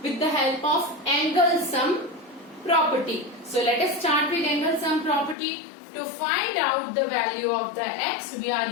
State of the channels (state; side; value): drops out; right; at 5.4 s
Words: with the help of angle sum property. So let us start with angle sum property. To find out the value of the x, we are